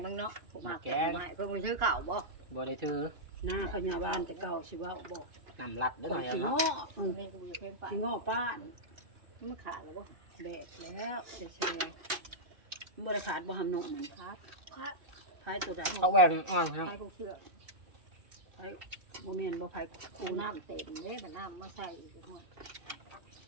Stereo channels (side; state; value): left; late; 2.7 ms